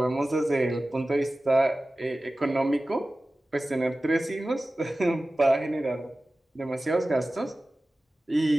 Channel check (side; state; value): both; normal; correlation 0.96